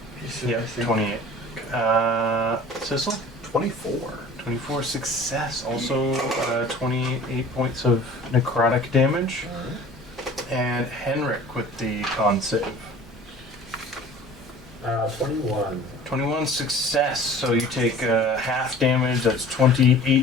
yep, 28. Sissel, 24. 24 success. Also, 28 points of necrotic damage. And Henrik with the con save. 21. 21 success, so you take half damage, that's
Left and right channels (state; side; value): normal; both; correlation 0.45